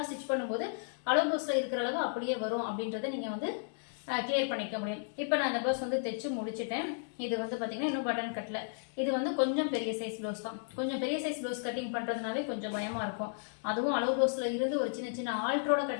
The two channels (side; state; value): right; silent; digital silence